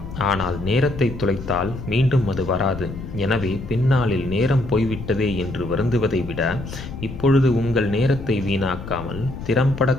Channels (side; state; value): left; noise; rumble, 10 dB below the sound